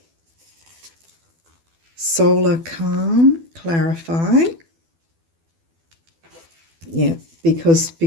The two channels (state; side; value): late; left; 12 ms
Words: Solar calm, clarify. Yeah, because